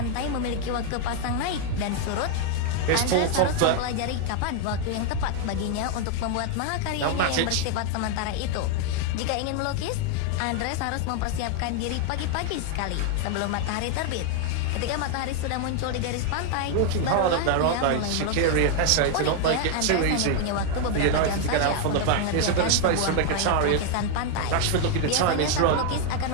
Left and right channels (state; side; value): different; both; correlation 0.00